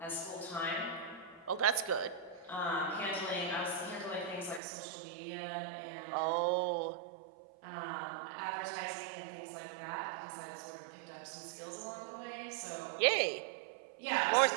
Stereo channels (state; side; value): drops out; left; at 4.6 s